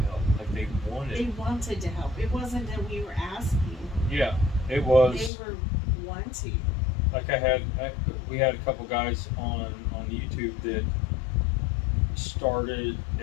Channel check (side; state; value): right; drops out; at 5.3 s